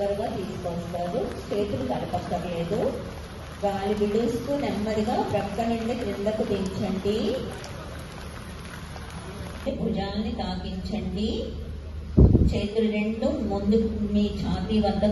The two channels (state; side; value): identical; both; correlation 1.00